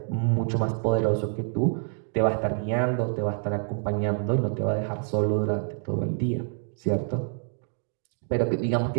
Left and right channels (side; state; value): left; silent; 57 dB below the other